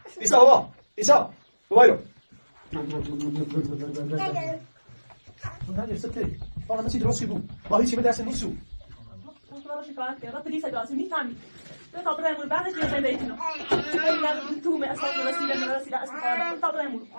ایسا بابا. ایسا. بابا. نریز ست. فقط مسید روسی بود. با هیچی به دست نیستو. اون شکایت کرد. پلیس داشت میفهمید. به خاطر بعدش یه زنده ایتونو. تو من اساس رسیدن اصلا خاطر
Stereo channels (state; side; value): inverted; both; correlation -1.00